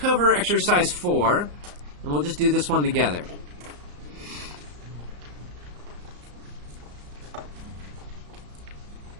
exercise 4, and we'll just do this one together.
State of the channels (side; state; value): left; late; 34 ms